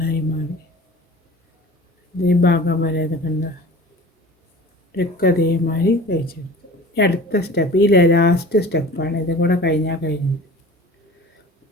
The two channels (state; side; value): normal; both; correlation 0.41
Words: മാറി. ഈ ഭാഗം വരെ ഇത് കണ്ട ഇതൊക്കെ അതേമാതിരി തയ്ച്ചെടുത്തു. അടുത്ത സ്റ്റെപ്പ് ഈ ലാസ്റ്റ് സ്റ്റെപ്പാണ്. ഇതും കൂടെ കഴിഞ്ഞാൽ കഴിഞ്ഞു.